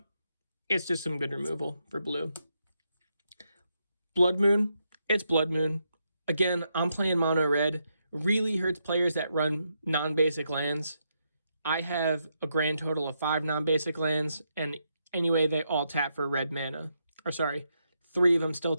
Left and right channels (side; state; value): both; inverted; correlation -0.81